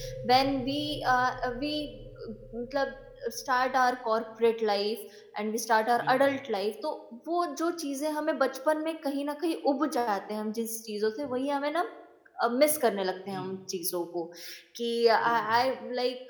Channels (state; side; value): identical; both; correlation 1.00